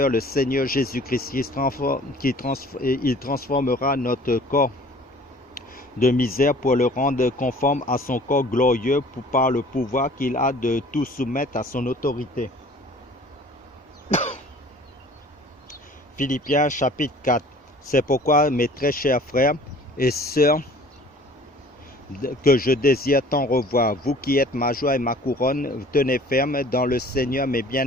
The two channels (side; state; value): both; normal; correlation 0.49